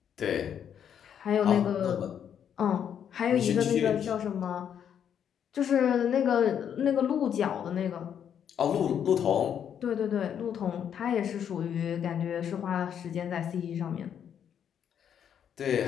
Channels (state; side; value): quieter; right; 8.7 dB